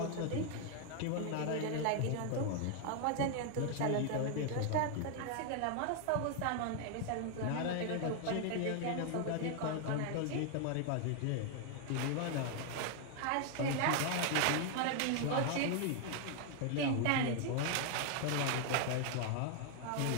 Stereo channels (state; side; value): different; both; correlation 0.00